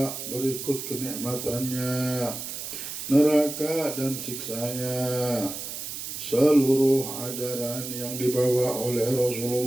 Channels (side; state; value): right; noise; hiss, 7 dB below the sound